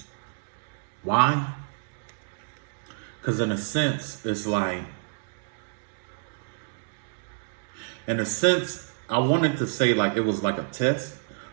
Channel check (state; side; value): silent; left; digital silence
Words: Why? Because in a sense, it's like, I wanted to say like it was like a test,